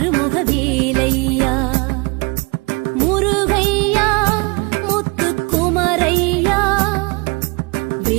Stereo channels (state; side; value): quieter; left; 28.2 dB